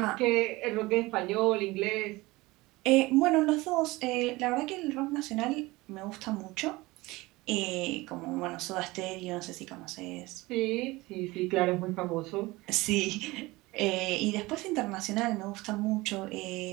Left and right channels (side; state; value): left; quieter; 21.1 dB